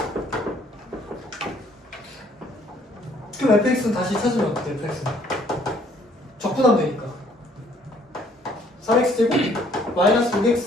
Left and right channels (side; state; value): both; normal; correlation 0.62